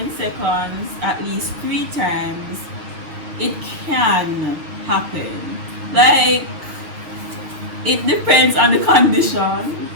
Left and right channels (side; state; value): left; late; 6.6 ms